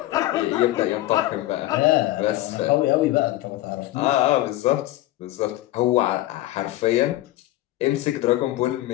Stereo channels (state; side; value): quieter; right; 16.3 dB